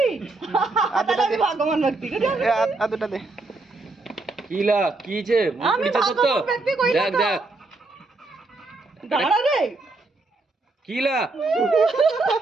আদুটা দে ভগবান ভক্তি করে এ আদুটা দে কিলা কি যে আমি নিচে তো ভগবান ভক্তি কইলা দেখ দেখ দাঁড়া রে কিলা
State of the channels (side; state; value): left; quieter; 3.4 dB